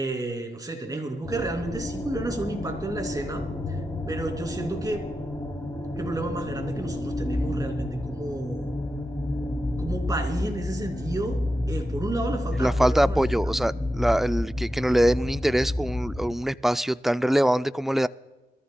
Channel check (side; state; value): both; normal; correlation 0.91